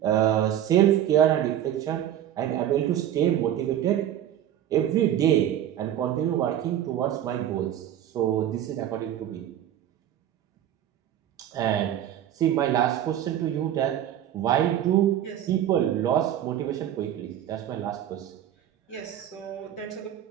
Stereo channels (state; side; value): quieter; left; 11.2 dB